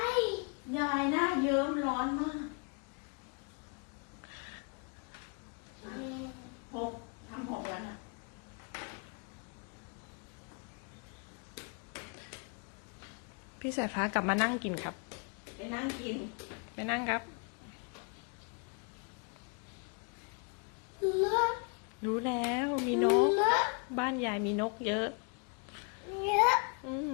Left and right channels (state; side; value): quieter; right; 37.2 dB